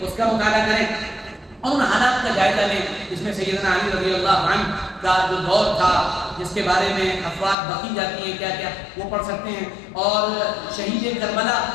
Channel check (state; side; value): drops out; right; at 7.6 s